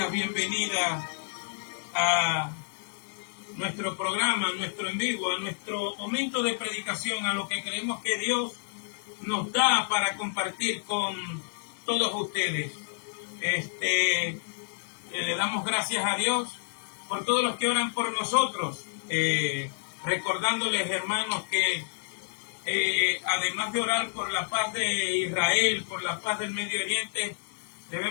bienvenida a nuestro programa, a nuestro en vivo, a nuestro momento de predicación, a lo que creemos que Dios nos da para compartir con todos ustedes. Le damos gracias a Dios por todos los que oran por nosotros, recordándoles, hermanos, que además de orar por la paz de Israel, por la paz del Medio Oriente,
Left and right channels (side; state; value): right; silent; digital silence